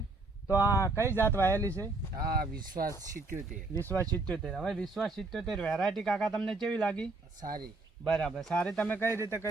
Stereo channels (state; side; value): quieter; left; 3.3 dB